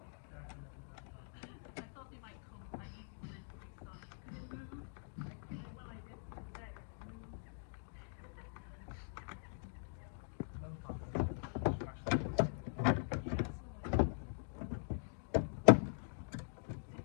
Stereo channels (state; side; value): silent; right; digital silence